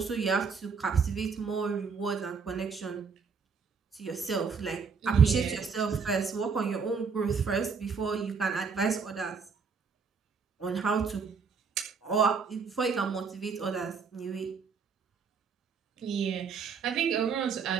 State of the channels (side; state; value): left; quieter; 5.6 dB